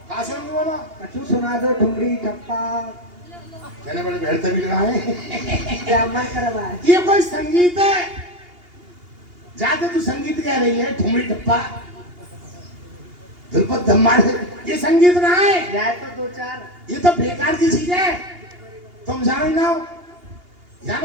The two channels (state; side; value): late; left; 2.8 ms